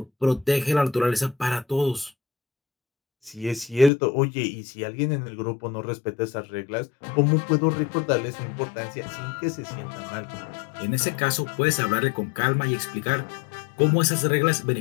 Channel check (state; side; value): drops out; right; at 3.9 s